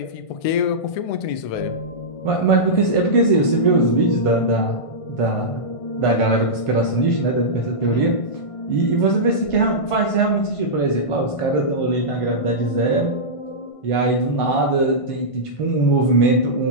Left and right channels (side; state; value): right; late; 1.5 ms